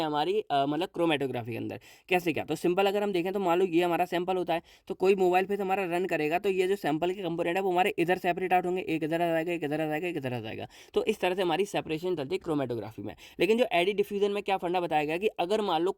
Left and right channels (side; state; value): both; identical; correlation 1.00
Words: हमारी मतलब क्रोमेटोग्राफी के अंदर। कैसे क्या, तो सिंपल अगर हम देखें तो मान लो ये हमारा सैंपल होता है, तो कोई मोबाइल पे हमारा रन करेगा तो ये जो सैंपल के कंपोनेंट है वो हमारे इधर सेपरेट आउट होंगे, एक इधर आ जाएगा, एक इधर आ जाएगा, एक इधर आ जाएगा। तो इस तरह से हमारी सेपरेशन चलती है क्रोमेटोग्राफी में। लेकिन जो एडी डिफ्यूजन में क्या फंडा बताया गया कि अगर मान लो